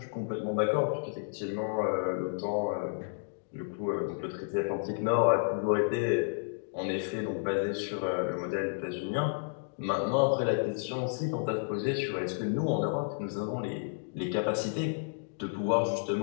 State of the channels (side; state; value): right; silent; digital silence